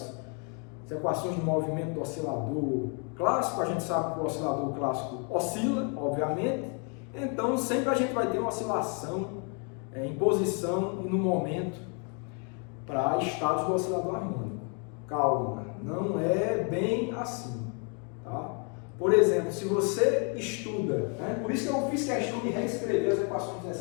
equações de movimento do oscilador clássico. A gente sabe que o oscilador clássico oscila, obviamente, então sempre a gente vai ter uma oscilação em posição e no momento para estados do oscilador harmônico. Calma, não é bem assim, tá? Por exemplo, se você estuda, né? Por isso que eu fiz questão de reescrever as equações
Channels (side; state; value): right; quieter; 38.4 dB